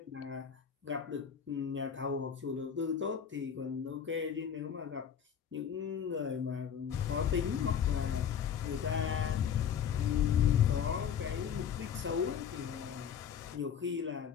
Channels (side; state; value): right; quieter; 8.0 dB